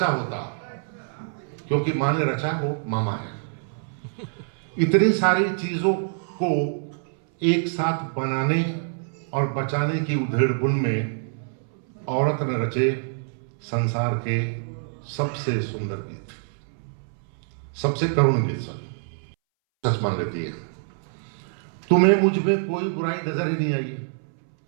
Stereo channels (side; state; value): left; silent; 61 dB below the other